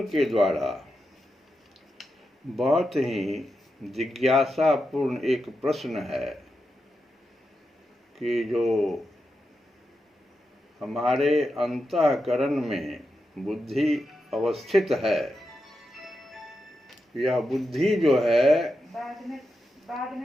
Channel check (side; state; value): both; normal; correlation 0.88